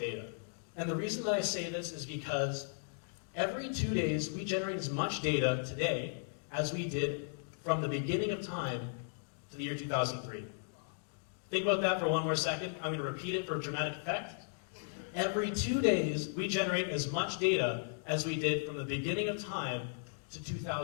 And the reason that I say this is because every 2 days we generate as much data today as we did from the beginning of time to the year 2003. Think about that for one more second. I'm going to repeat it for dramatic effect. Every 2 days we generate as much data as we did from the beginning of time to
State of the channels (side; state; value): right; silent; digital silence